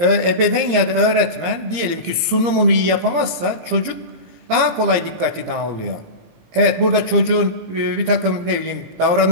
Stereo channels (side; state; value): left; late; 17 ms